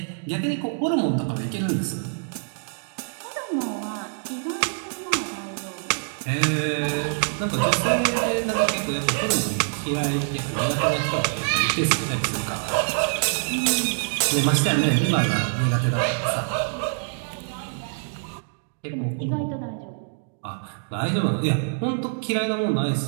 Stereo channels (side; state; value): left; silent; digital silence